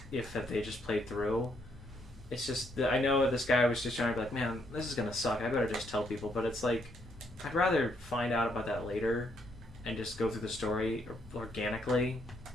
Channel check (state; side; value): normal; both; correlation 0.73